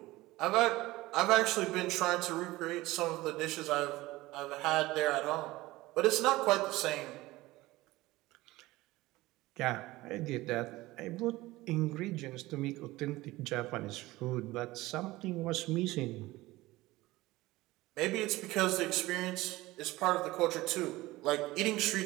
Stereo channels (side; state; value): left; quieter; 18.9 dB